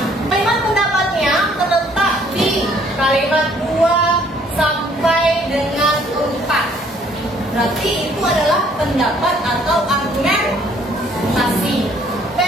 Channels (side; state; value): both; normal; correlation 0.61